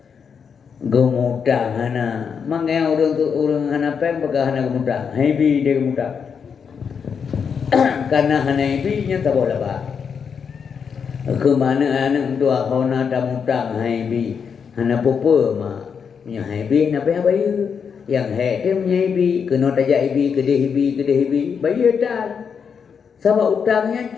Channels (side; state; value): right; quieter; 6.6 dB